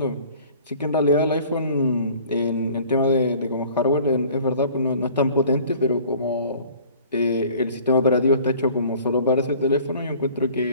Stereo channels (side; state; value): both; inverted; correlation -0.50